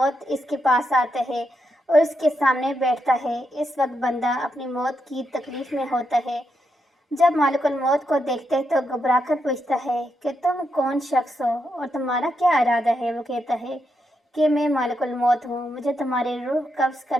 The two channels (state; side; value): normal; both; correlation 0.82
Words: اس کے پاس آتا ہے اور اس کے سامنے بیٹھتا ہے۔ اس وقت بندہ اپنی موت کی تکلیف میں ہوتا ہے۔ جب مالک الموت کو دیکھتے ہے تو گھبرا کر پوچھتا ہے کہ تم کون شخص ہو اور تمہارا کیا ارادہ ہے؟ وہ کہتا ہے کہ میں مالک الموت ہوں، مجھے تمہاری روح قبض